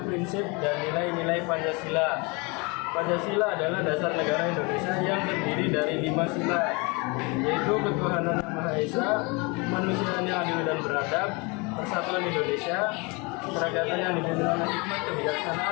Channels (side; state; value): right; quieter; 28.8 dB